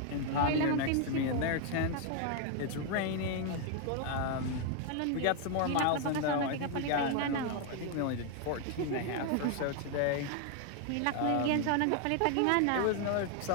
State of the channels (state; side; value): different; both; correlation 0.00